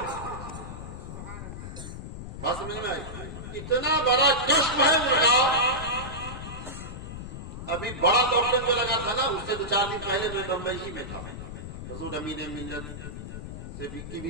بات سمجھ میں آئی؟ اتنا بڑا کشف ہے ان کا۔ ابھی بڑا لاک ڈاؤن جو لگا تھا نا، اس سے 2-4 دن پہلے میں بمبئی ہی میں تھا۔ حضور امین ملت سے کی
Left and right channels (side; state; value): left; noise; rumble, 9 dB below the sound